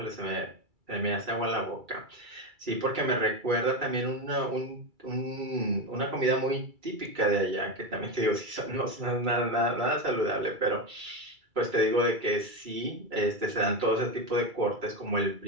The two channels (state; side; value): late; left; 2.3 ms